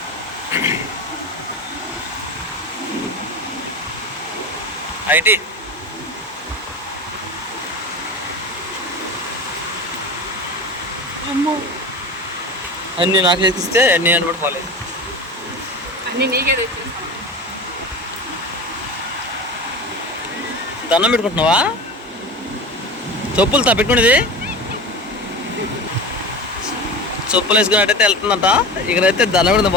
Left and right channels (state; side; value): normal; both; correlation 0.29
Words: ఐటీ అన్నీ నాకు ఎక్కిస్తే అన్నీ అనుకుంటు పోలేదు. అన్నీ నీకే తెచ్చి దండం పెట్టుకుంటున్నావా? చెప్పులు పెట్టుకునేది చెప్పులు వేసుకున్నట్టయితే వెళ్తుందంట. ఇక్కడైతే దండం పెడుతూ